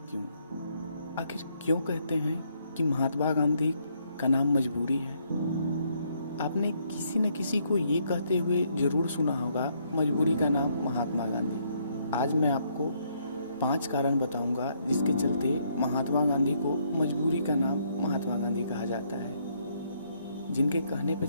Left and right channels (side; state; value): both; inverted; correlation -0.71